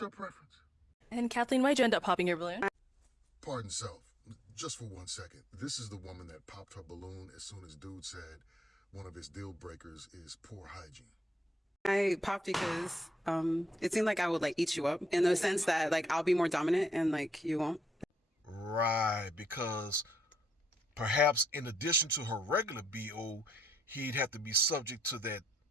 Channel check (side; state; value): both; normal; correlation 0.75